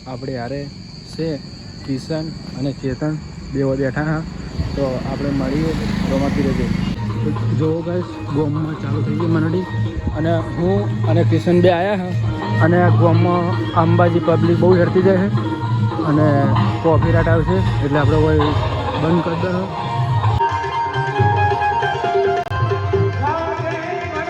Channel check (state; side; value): identical; both; correlation 1.00